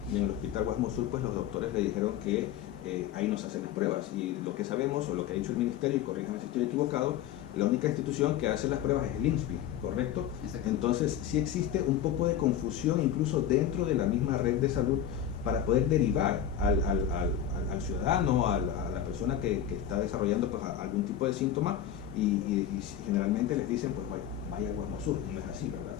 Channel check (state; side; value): quieter; right; 10.1 dB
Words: y en el Hospital Guasmo Sur pues los doctores le dijeron que ahí no se hacen las pruebas, y lo que sabemos o lo que ha dicho el Ministerio, y corríjame si estoy equivocado, la única institución que hace las pruebas es el INSPI, ¿correcto? Exacto. Entonces sí existe un poco de confusión incluso dentro de la misma red de salud para poder derivar al ciudadano, a la persona que está desarrollando pues algún tipo de síntoma, y generalmente les dicen pues vaya al Guasmo Sur, y no es así, ¿verdad?